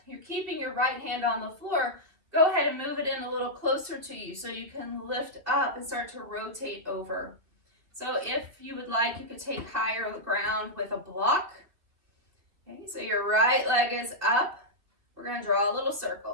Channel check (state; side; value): late; left; 2.5 ms